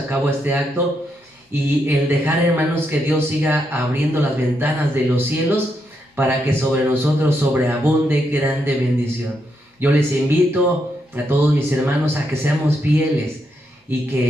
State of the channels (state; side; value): normal; both; correlation 0.80